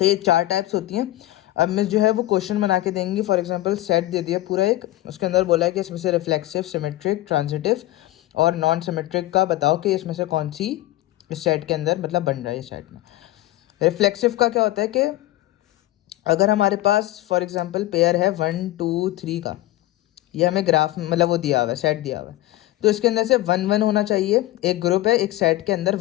ये 4 टाइप्स होती हैं। अब मिस जो है वो क्वेश्चन बना के देंगी। फॉर एग्जांपल सेट दे दिया पूरा एक, उसके अंदर बोला है कि इसमें से रिफ्लेक्सिव, सिमेट्रिक, ट्रांजिटिव और नॉन सिमेट्रिक का बताओ कि इसमें से कौन सी इस सेट के अंदर मतलब बन रहा है। इस सेट में रिफ्लेक्सिव का क्या होता है कि अगर हमारे पास फॉर एग्जांपल पेयर है 1 2 3 का, ये हमें ग्राफ मतलब वो दिया हुआ है, सेट दिया हुआ है, तो इसके अंदर से 1 1 होना चाहिए। एक ग्रुप है, एक सेट के अंदर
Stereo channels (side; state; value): right; quieter; 16.6 dB